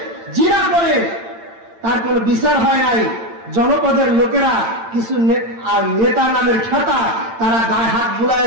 জিনা করে, তার কোনো বিচার হয় নাই। জনপদের লোকেরা কিছু নেতা নামের খেতা, তারা গায়ে হাত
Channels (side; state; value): left; late; 8.9 ms